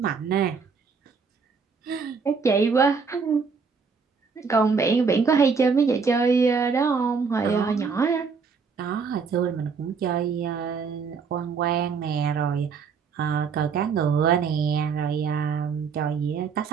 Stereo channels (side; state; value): left; quieter; 5.4 dB